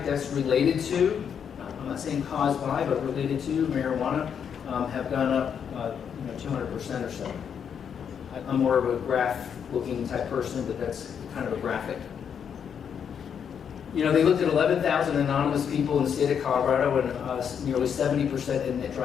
deaths related to I'm not saying caused by, but related to marijuana, have gone up 200% or so. I'm more of a graph-looking type person, but that's kind of a graphic. They looked at 11,000 anonymous people in the state of Colorado, and nearly 70% admit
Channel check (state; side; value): quieter; right; 7.7 dB